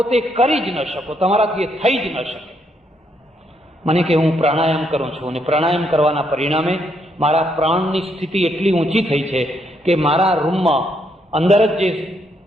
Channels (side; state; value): both; normal; correlation 0.74